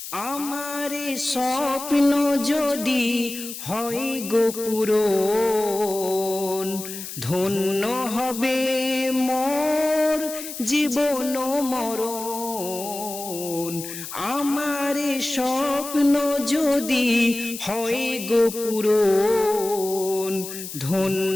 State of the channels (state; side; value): noise; left; hiss, 10 dB below the sound